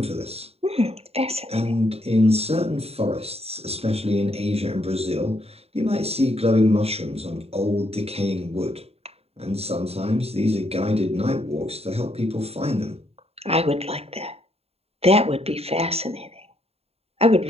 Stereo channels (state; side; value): late; left; 0.29 ms